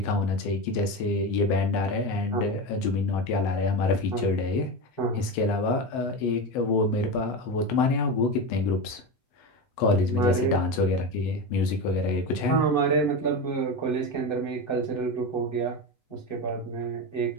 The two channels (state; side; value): late; right; 8.0 ms